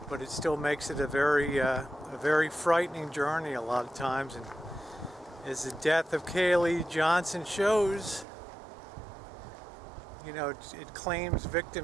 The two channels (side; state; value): left; drops out; at 8.2 s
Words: But it still makes it a very frightening journey a lot of times. And as the death of Kaylee Johnson shows, you know, it claims